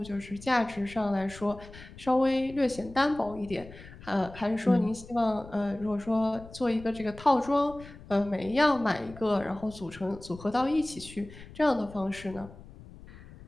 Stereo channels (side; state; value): left; noise; rumble, 18 dB below the sound